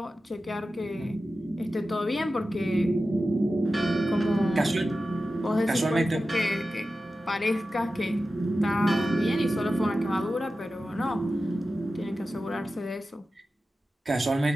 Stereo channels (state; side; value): normal; both; correlation 0.93